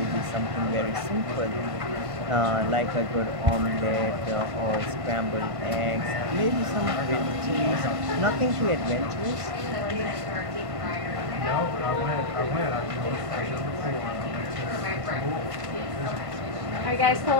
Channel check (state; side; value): late; left; 1.5 ms